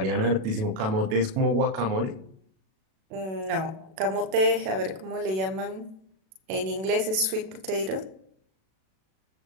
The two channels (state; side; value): late; left; 37 ms